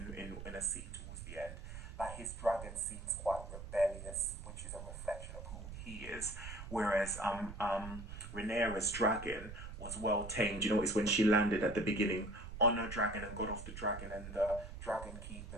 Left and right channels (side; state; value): right; noise; rumble, 10 dB below the sound